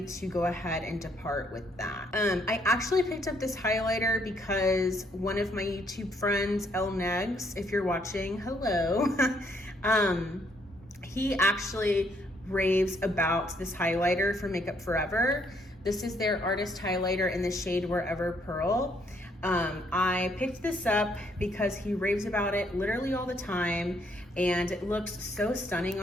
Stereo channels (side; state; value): both; normal; correlation 0.70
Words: to go ahead and depart with that. I actually picked up this highlighter because one of my YouTube friends, El Negs, if you're watching, hello. He actually raves about this highlighter from Makeup Forever. This is their artist highlighter in the shade Wherever Pearl. I picked this up because he raves about it literally all the time, and it looks so stunning